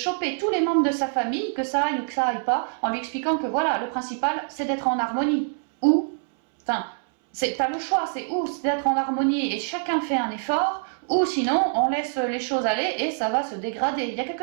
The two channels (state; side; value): silent; left; 62 dB below the other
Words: tous les membres de sa famille, que ça aille ou que ça aille pas, en lui expliquant que voilà, le principal, c'est d'être en harmonie. Ou, enfin, t'as le choix, c'est d'être en harmonie et chacun fait un effort, ou sinon, on laisse les choses aller et ça va se dégrader. Il y a